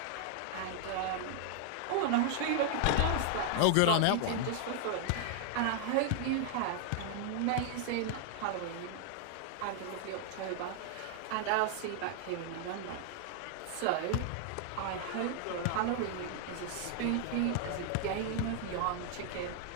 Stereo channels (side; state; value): both; different; correlation 0.00